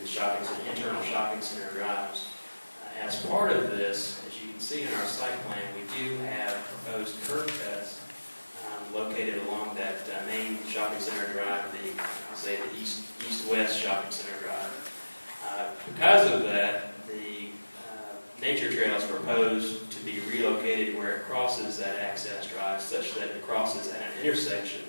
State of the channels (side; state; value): both; inverted; correlation -1.00